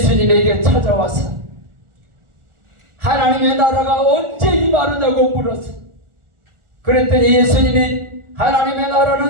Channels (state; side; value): late; left; 1.4 ms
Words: 찾아와서 하나님의 나라가 언제 임하느냐고 물었어. 그랬더니 예수님이 하나님의